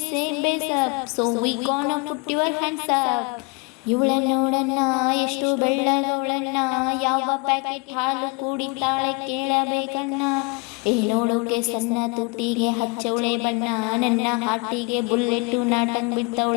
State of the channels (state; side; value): quieter; right; 31.0 dB